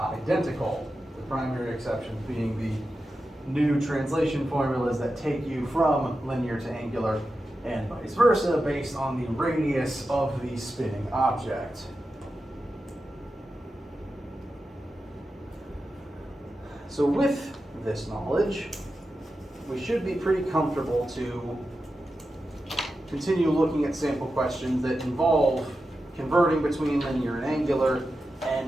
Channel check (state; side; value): normal; both; correlation 0.91